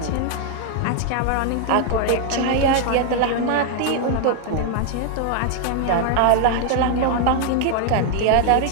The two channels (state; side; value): different; both; correlation 0.00